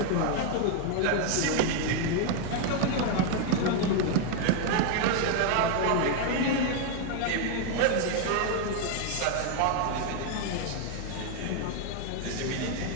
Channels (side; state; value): both; different; correlation 0.01